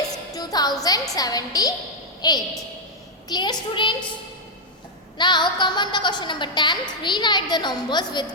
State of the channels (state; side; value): normal; both; correlation 0.00